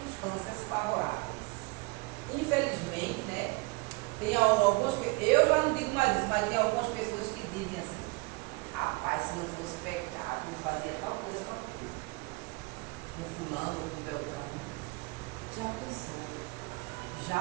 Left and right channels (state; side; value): quieter; left; 26.1 dB